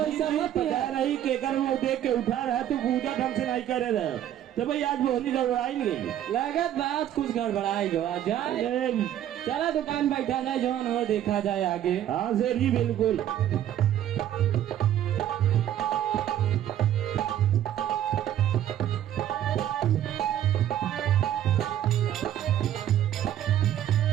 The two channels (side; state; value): left; quieter; 11.3 dB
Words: मत रही के कर वो देख के उठा रहा तो पूजा ढंग से नहीं करे रहे तो भाई आज बोली गड़बड़ाई नहीं लगत बात कुछ गड़बड़ाई गो आ जाए। चला दुकान बैठा जाए जो हो देखा जाए आगे। हाँ सेठ जी बिल्कुल।